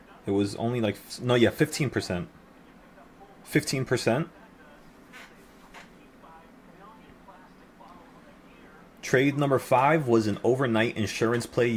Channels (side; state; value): both; identical; correlation 1.00